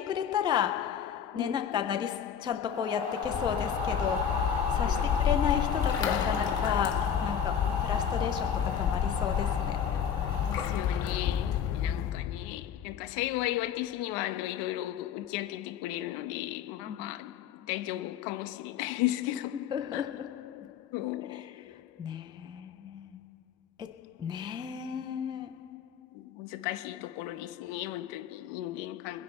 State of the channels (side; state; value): right; quieter; 8.3 dB